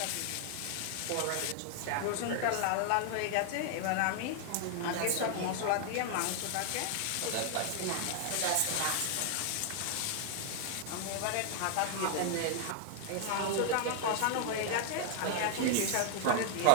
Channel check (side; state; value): both; different; correlation 0.00